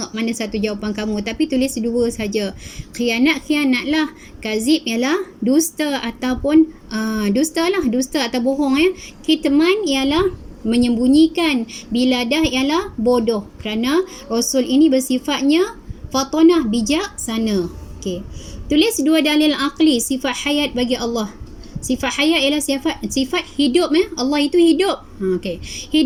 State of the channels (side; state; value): both; identical; correlation 1.00